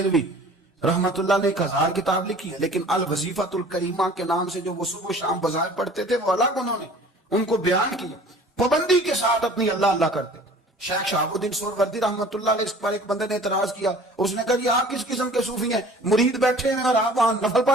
رحمت اللہ نے 1000 کتاب لکھی ہے، لیکن الوظیفۃ الکریمہ کے نام سے جو وہ صبح و شام بظاہر پڑھتے تھے وہ الگ انہوں نے ان کو بیان کیا، پابندی کے ساتھ اپنی اللہ اللہ کرتے تھے۔ شیخ شہاب الدین سہروردی رحمت اللہ علیہ اس پر ایک بندے نے اعتراض کیا، اس نے کہا یہ آپ کس قسم کے صوفی ہیں، مرید بیٹھے ہیں اور آپ وہاں نفل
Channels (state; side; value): normal; both; correlation 0.48